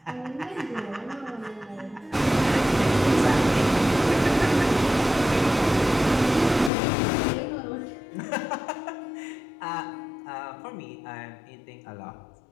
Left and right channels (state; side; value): drops out; right; at 6.7 s